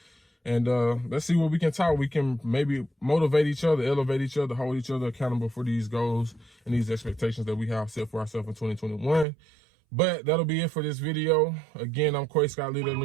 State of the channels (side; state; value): left; drops out; at 9.2 s